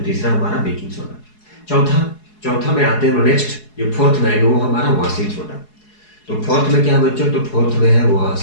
तीसरा हमारा बेकिंग सोडा। चौथा, चौथा में आते हैं नेक्स्ट, जो फोर्थ में आएगा वो हमारा वॉशिंग सोडा। तो फोर्थ में क्या है बच्चों, तो फोर्थ में है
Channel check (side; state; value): right; late; 4.7 ms